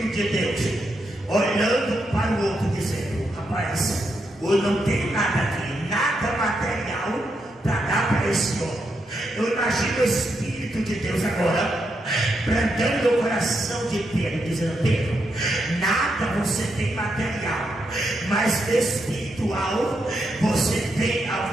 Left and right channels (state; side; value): normal; both; correlation 0.82